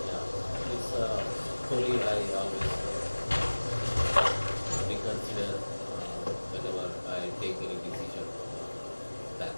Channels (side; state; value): both; inverted; correlation -1.00